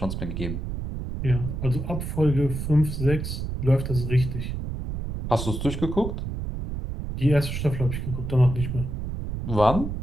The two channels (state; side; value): noise; right; rumble, 5 dB below the sound